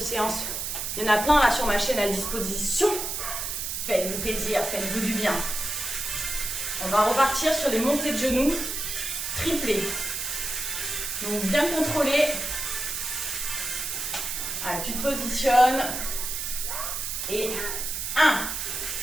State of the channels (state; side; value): noise; right; hiss, 3 dB below the sound